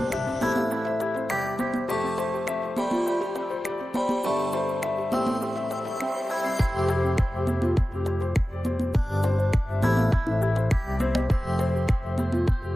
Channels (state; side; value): normal; both; correlation 0.95